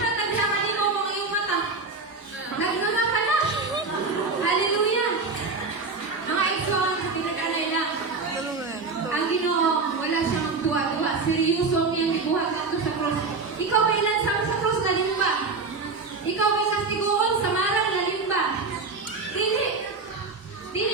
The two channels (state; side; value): quieter; left; 4.1 dB